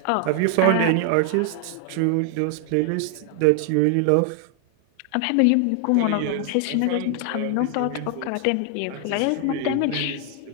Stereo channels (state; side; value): different; both; correlation 0.00